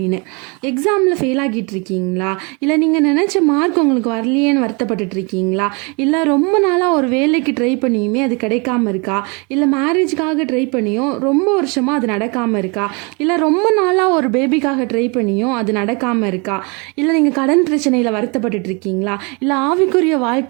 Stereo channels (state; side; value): quieter; left; 31.3 dB